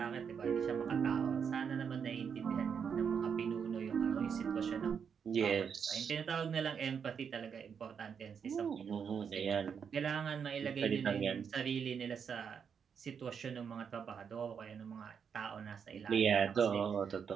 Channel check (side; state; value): left; quieter; 6.9 dB